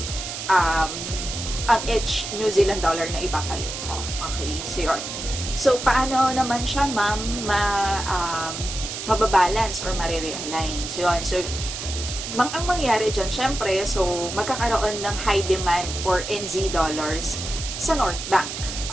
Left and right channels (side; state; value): right; noise; hiss, 7 dB below the sound